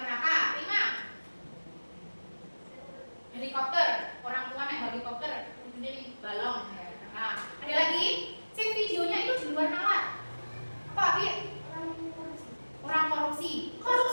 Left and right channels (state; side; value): inverted; both; correlation -1.00